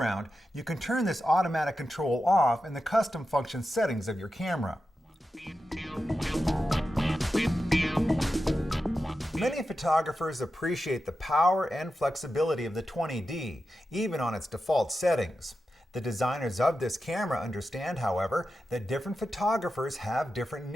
you can turn this automatic control off in the custom function settings of your camera. Many photographers appreciate the power and flexibility of the 20D, even on its default settings. The designers of this camera understand, however, that different photographers have different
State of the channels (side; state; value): both; normal; correlation 0.91